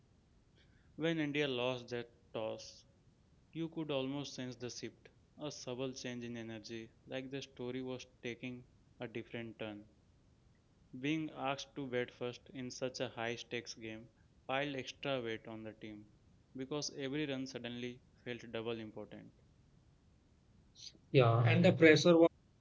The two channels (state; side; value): identical; both; correlation 1.00